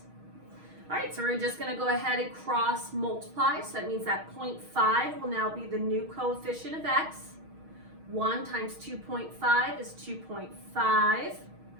All right, so we're just going to go ahead and cross multiply. So that means that 0.5 will now be the new coefficient of x. 1 times 2.5 is 2.5.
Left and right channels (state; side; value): late; left; 6.4 ms